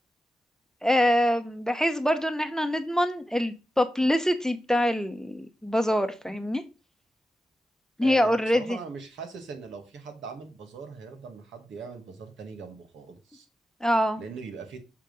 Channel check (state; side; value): normal; both; correlation 0.92